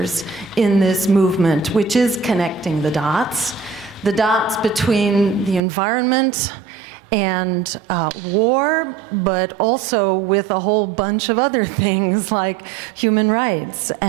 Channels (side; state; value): left; drops out; at 5.6 s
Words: in this movement, which is connecting the dots between the environment and war, but also with a whole bunch of other things like human rights